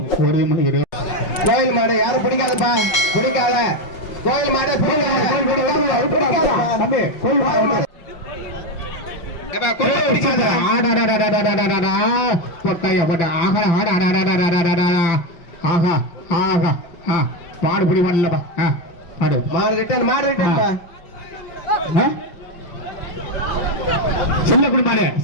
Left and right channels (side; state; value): right; late; 5.5 ms